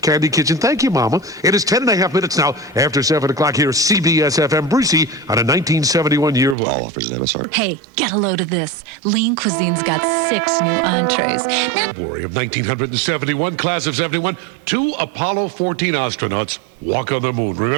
Candy Kitchen. Thank you, Mama. It is 10.5 minutes now after 7 o'clock here at CBS FM Brucie on a 1971 yearbook. All offers at MSR. Hey, get a load of this. Lean Cuisine's got 6 new entrees. February of 1971, class of 71, 2 Apollo 14 astronauts walk on the moon,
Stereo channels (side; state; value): left; drops out; at 6.6 s